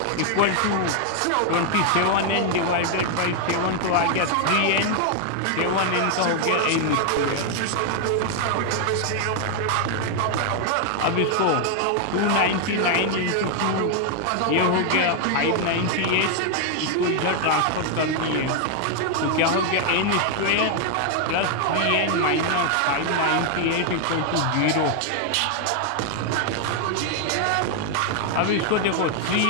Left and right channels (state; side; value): different; both; correlation 0.00